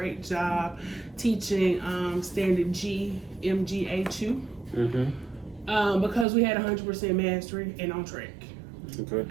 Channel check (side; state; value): left; drops out; at 6.2 s